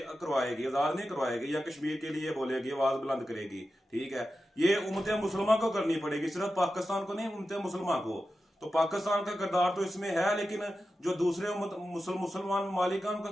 करवाएगी, आजाद नहीं करवाएगी या कश्मीर के लिए बोलेगी, आवाज बुलंद करेगी। ठीक है, ये उम्मत मुसलमान को करनी पड़ेगी, सिर्फ पाकिस्तान को नहीं, उम्मत मुसलमान को। तो पाकिस्तान का किरदार तो इसमें है, लेकिन जो दूसरे मुसलमान ममालिक हैं उनका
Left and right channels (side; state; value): both; normal; correlation 0.91